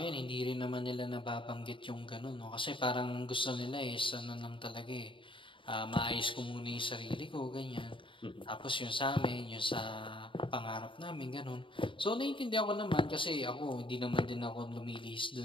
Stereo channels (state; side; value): late; right; 0.25 ms